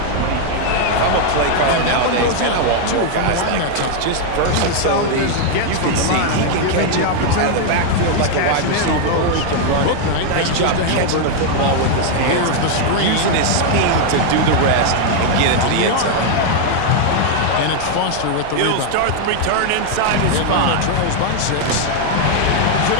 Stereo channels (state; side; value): different; both; correlation 0.00